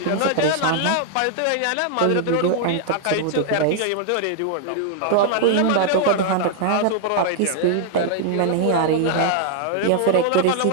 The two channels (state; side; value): different; both; correlation 0.00